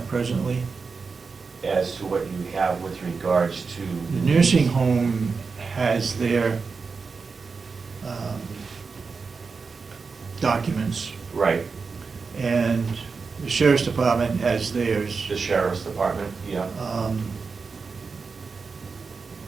presently? As to what you have with regards to? The nursing home has their documents, Right, and the sheriff's department has theirs. the sheriff's department, yeah.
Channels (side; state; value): left; quieter; 4.8 dB